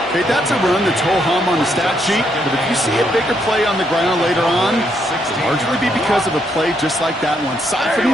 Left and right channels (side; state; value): both; normal; correlation 0.75